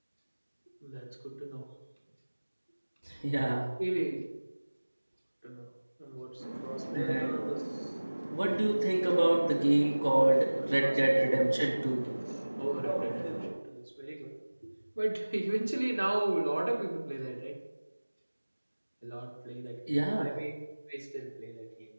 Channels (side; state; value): both; inverted; correlation -1.00